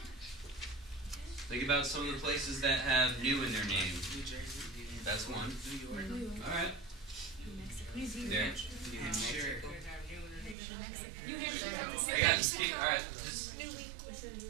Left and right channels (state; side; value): drops out; left; at 10.6 s